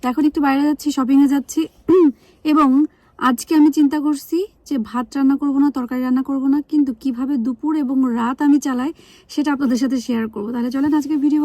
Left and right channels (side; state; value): both; identical; correlation 1.00